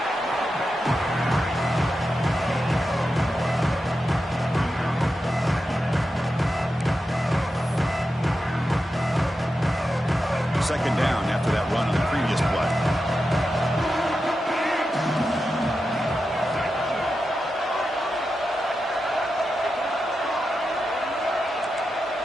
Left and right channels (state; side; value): normal; both; correlation 0.90